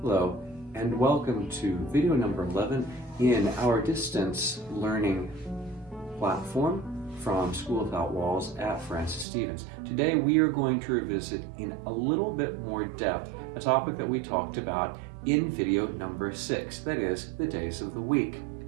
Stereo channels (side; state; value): left; drops out; at 9.2 s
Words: Hello, and welcome to video number 11 in our distance learning platform from School Without Walls at Francis Stevens. Today we are going to revisit in a little bit more depth a topic that we talked about in video number 6, that is, the days of the week.